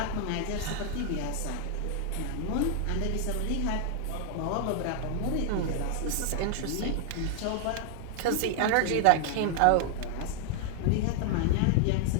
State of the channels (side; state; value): both; different; correlation 0.00